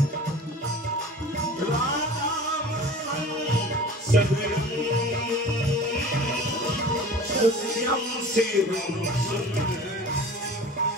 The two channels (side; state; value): both; normal; correlation 0.41